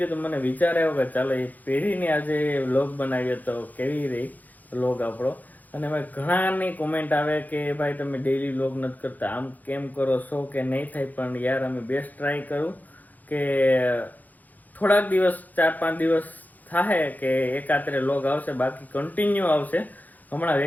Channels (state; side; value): late; right; 0.082 ms